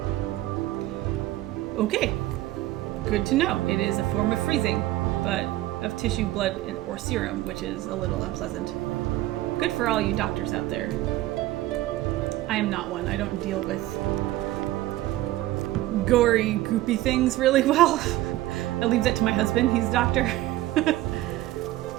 Okay. Good to know. It is a form of freezing, but of tissue, blood, or serum, which is a little unpleasant. Good for all you doctors out there. I am not one. I don't deal with gory, goopy things really well. I leave that to my husband. He's a doctor. Alright,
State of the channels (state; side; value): quieter; left; 16.0 dB